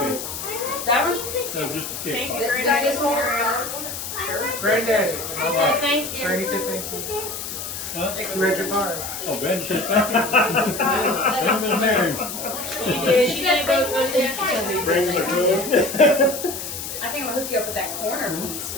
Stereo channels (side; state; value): left; noise; hiss, 7 dB below the sound